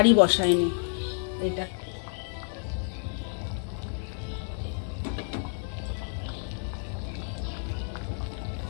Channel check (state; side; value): silent; right; 58 dB below the other